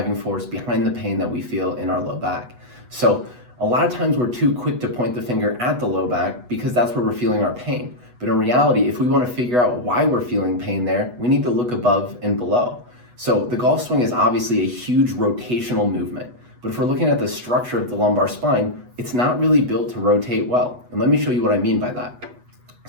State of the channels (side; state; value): left; late; 8.2 ms